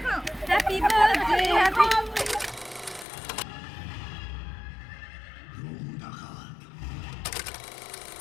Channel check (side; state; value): right; drops out; at 3.1 s